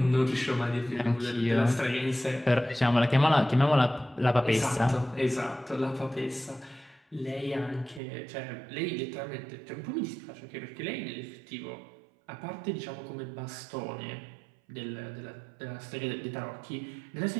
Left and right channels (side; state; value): left; drops out; at 8.0 s